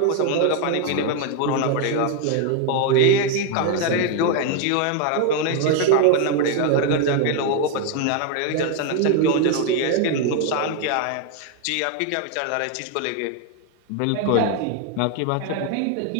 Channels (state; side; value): different; both; correlation 0.01